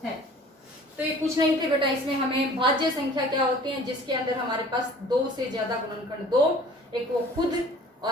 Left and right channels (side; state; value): both; normal; correlation 0.49